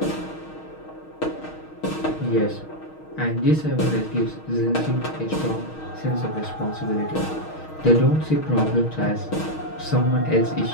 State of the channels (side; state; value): right; late; 6.4 ms